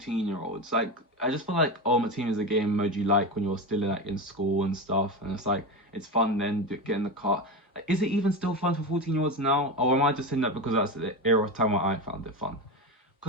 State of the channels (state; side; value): normal; both; correlation 0.20